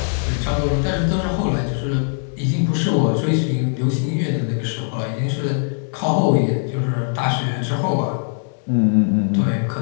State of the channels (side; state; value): right; silent; 65 dB below the other